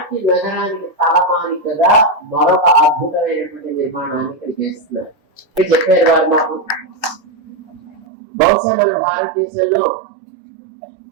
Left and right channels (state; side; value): drops out; left; at 8.0 s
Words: నగరానికి తలమానికగా మరొక అద్భుతమైనటువంటి నిర్మాణాన్ని ఇక్కడ చేస్తున్నారు. చెప్పారు వారు మాకు, బహుశా మన భారతదేశంలో